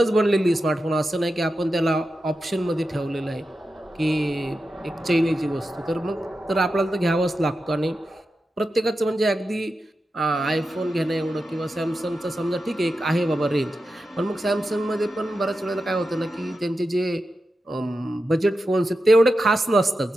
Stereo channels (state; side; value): normal; both; correlation 0.90